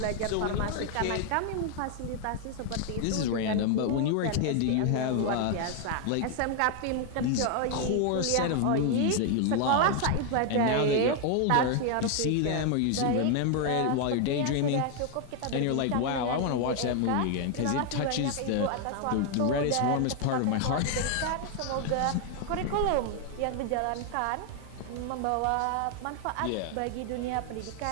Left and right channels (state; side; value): different; both; correlation 0.00